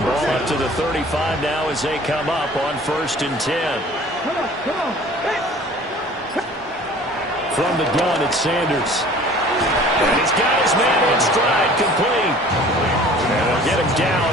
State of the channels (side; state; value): both; normal; correlation 0.48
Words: Ball up to the 35 now as they come up on 1st and 10. From the gun, it's Sanders. And he's got his man in stride, complete. And they'll get him down